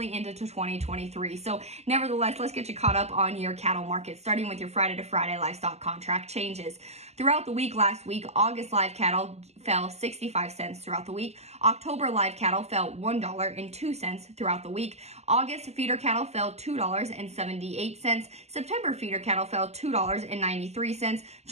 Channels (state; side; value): late; left; 0.31 ms